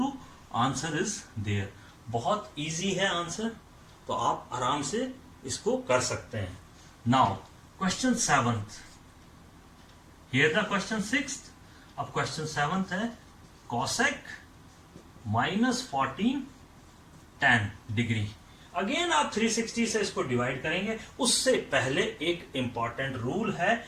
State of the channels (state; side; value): identical; both; correlation 1.00